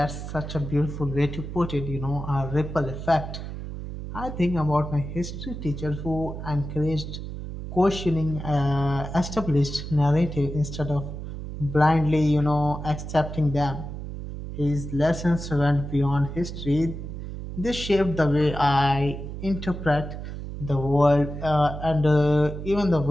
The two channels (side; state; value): right; noise; hum, 8 dB below the sound